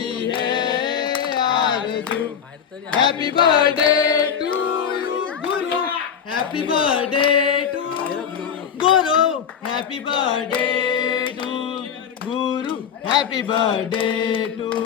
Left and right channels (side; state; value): right; quieter; 7.8 dB